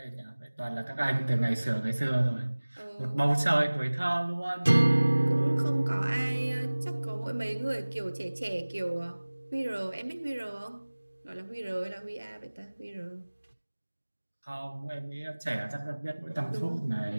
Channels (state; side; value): inverted; both; correlation -1.00